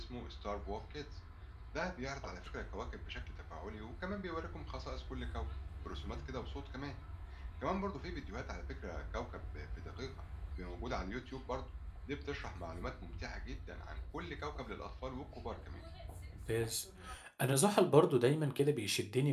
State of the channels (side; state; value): both; identical; correlation 1.00